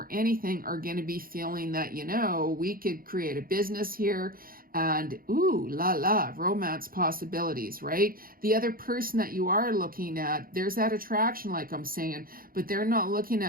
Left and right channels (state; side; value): late; left; 0.42 ms